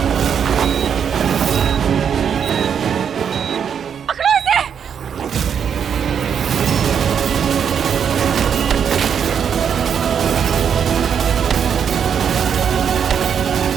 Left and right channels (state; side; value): quieter; left; 7.7 dB